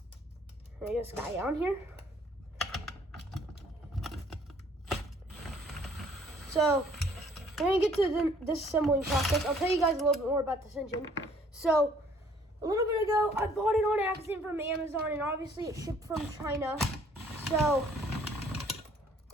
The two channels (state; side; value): normal; both; correlation 0.59